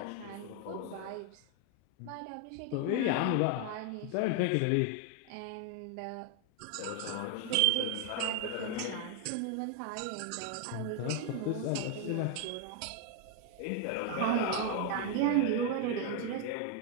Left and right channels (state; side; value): different; both; correlation 0.01